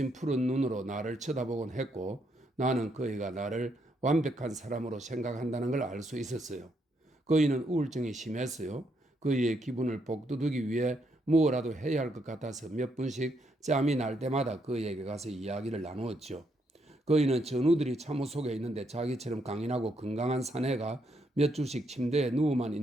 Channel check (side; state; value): both; normal; correlation 0.76